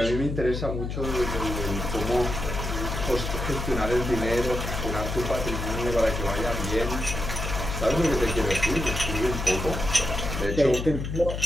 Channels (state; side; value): noise; left; hum, 4 dB below the sound